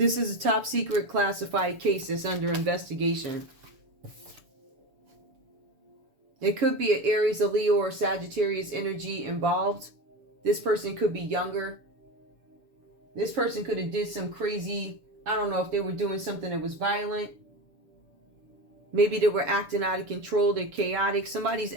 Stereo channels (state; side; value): late; left; 6.9 ms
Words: is a top secret classified case that's under investigation. It could be an Aries, a Leo, or Sagittarius energy involved. This person could be younger. This person could have did some crazy, I don't know if they were doing something that was violent. Maybe they were acting out of control. They're chaotic. Somebody's